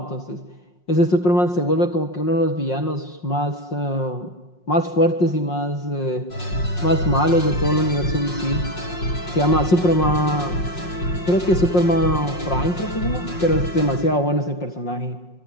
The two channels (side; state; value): right; late; 5.6 ms